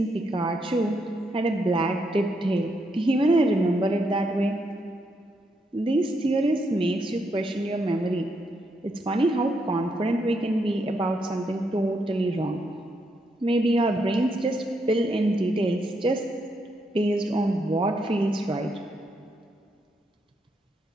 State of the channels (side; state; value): both; normal; correlation 0.78